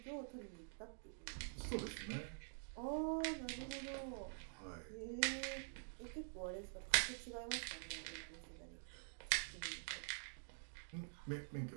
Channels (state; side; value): silent; left; digital silence